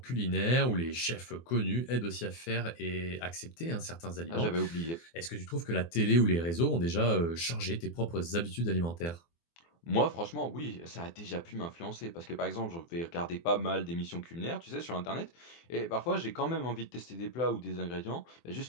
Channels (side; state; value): right; late; 24 ms